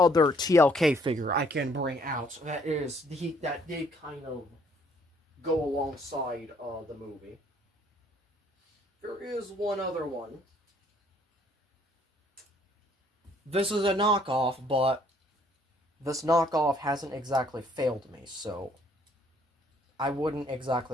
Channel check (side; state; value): both; normal; correlation 0.63